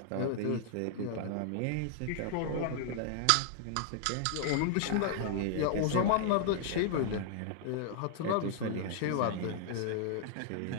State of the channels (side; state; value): both; different; correlation -0.01